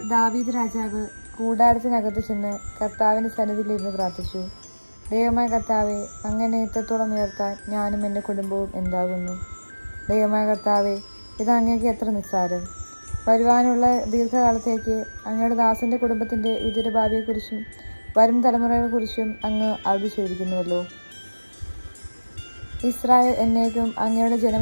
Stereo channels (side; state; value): both; inverted; correlation -1.00